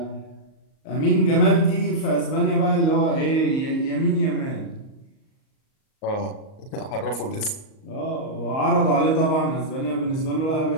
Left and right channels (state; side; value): late; right; 38 ms